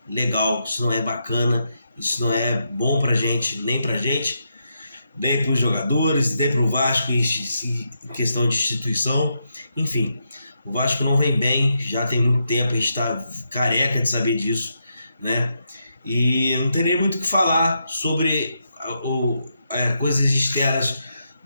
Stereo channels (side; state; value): both; inverted; correlation -0.82